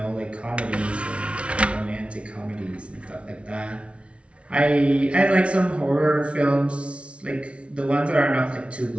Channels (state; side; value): late; left; 0.061 ms